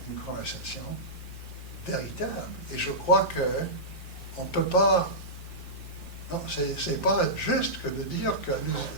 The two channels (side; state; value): both; normal; correlation -0.15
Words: une conversation véritable. Et je crois qu'on ne peut pas. Non, c'est pas juste que de dire que